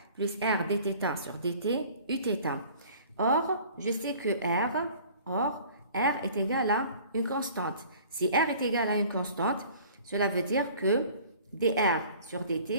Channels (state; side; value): inverted; both; correlation -0.49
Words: plus R dθ sur dt Uθ. Or, je sais que R est égal à une constante. Si R est égal à une constante, cela veut dire que dr sur